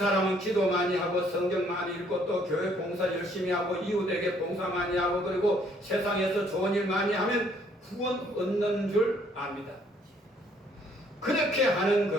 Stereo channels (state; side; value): normal; both; correlation 0.64